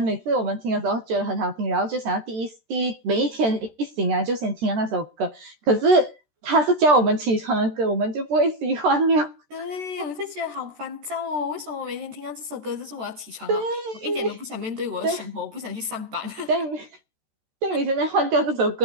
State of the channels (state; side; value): late; left; 13 ms